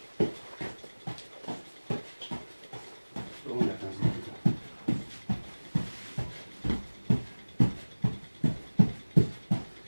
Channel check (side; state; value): both; inverted; correlation -1.00